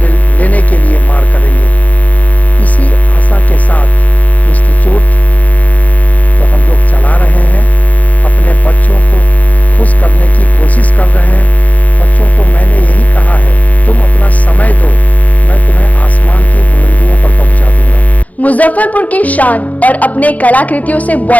लेने के लिए मार करेंगे। इसी आशा के साथ इंस्टीट्यूट तो हम लोग चला रहे हैं, अपने बच्चों को खुश करने की कोशिश कर रहे हैं। बच्चों को मैंने यही कहा है, तुम अपना समय दो, मैं तुम्हें आसमान की बुलंदियों पर पहुंचा दूंगा। मुजफ्फरपुर की शान और अपने कलाकृतियों से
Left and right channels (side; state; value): right; late; 0.075 ms